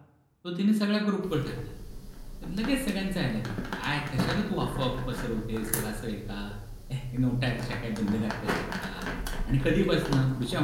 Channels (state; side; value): identical; both; correlation 1.00